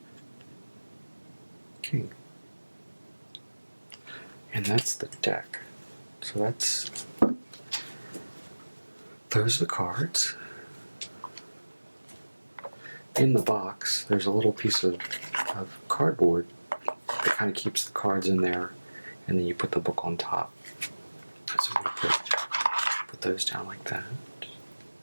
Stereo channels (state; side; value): inverted; both; correlation -1.00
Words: King. And that's the deck. So those are the cards. In the box, there's a little piece of cardboard that kind of keeps the cards in there, and then you put the book on top. So I'm going to put those down like that.